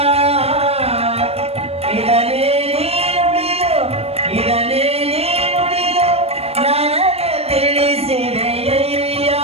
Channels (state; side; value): late; left; 0.29 ms